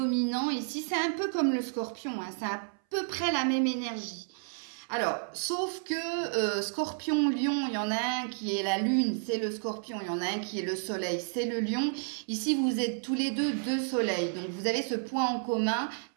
ici? C'est un peu comme le Scorpion, hein, c'est à peu près la même énergie. Alors, sauf que Scorpion, Lion, il y en a un qui est la Lune, c'est le Scorpion. Il y en a un qui est le Soleil, c'est le Lion. Ici, vous êtes tous les deux soleils. Donc, vous avez ce point en commun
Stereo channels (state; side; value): silent; left; 57 dB below the other